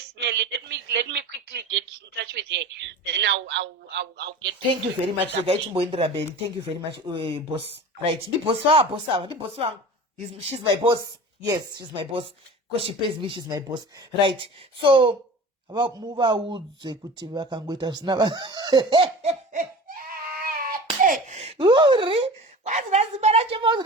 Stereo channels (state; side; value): normal; both; correlation 0.37